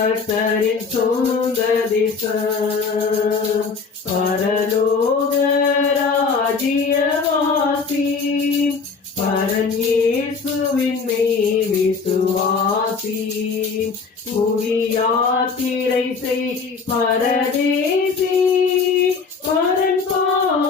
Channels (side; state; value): right; quieter; 4.9 dB